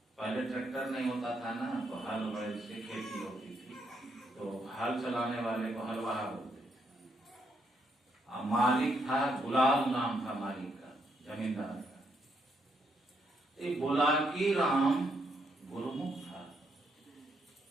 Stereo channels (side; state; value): both; normal; correlation 0.76